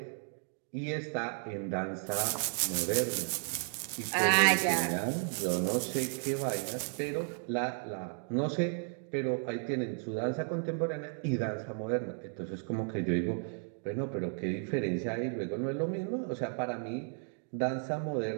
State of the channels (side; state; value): left; silent; 55 dB below the other